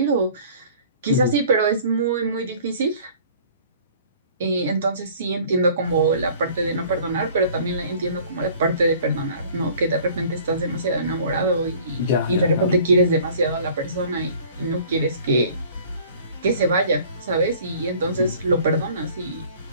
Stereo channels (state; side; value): inverted; both; correlation -0.51